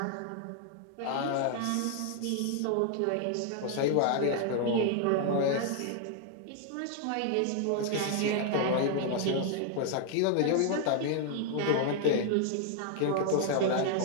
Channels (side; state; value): both; different; correlation 0.00